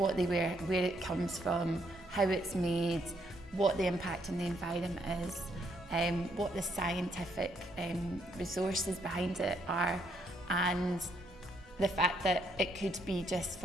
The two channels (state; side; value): normal; both; correlation 0.72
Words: it comes from, how it's made, what the impact on the environment is, what the scientific resources behind it are, and the fact that it could be just